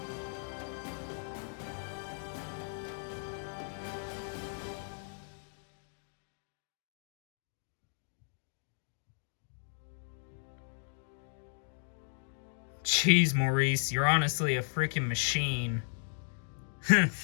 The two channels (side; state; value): right; silent; digital silence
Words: Jeez, Maurice, you're honestly a freaking machine.